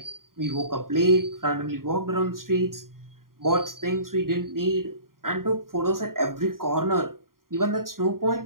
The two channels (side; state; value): left; late; 0.91 ms